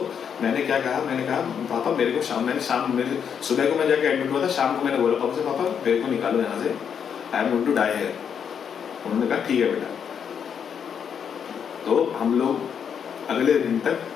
मैंने क्या कहा, मैंने कहा पापा मेरे को मेरे सुबह को मैं जाके एडमिट हुआ था, शाम को मैंने बोला पापा से, पापा मेरे को निकालो यहाँ से, I am going to die here. उन्होंने कहा ठीक है बेटा। तो हम लोग अगले दिन तक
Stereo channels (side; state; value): right; quieter; 7.6 dB